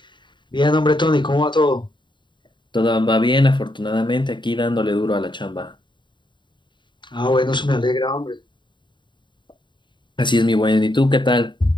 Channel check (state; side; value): late; right; 0.23 ms